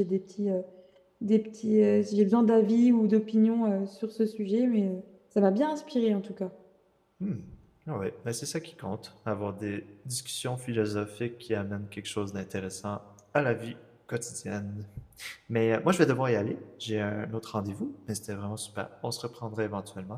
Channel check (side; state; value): both; identical; correlation 1.00